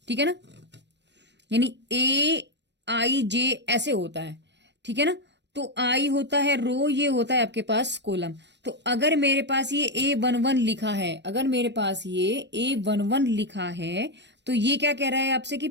ठीक है ना, यानी AIJ ऐसे होता है, ठीक है ना। तो आई होता है रो, ये होता है आपके पास कॉलम। तो अगर मेरे पास ये A11 लिखा है, अगर मेरे पास ये A11 लिखा है तो ये क्या कह रहा है आपसे कि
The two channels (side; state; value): left; late; 0.51 ms